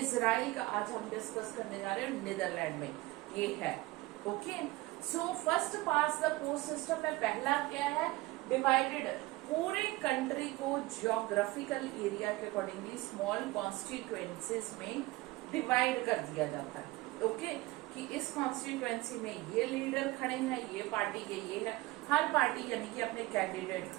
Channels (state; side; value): quieter; left; 19.9 dB